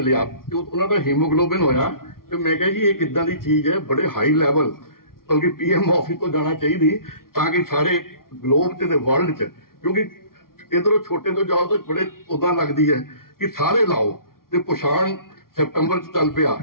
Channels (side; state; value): right; late; 0.93 ms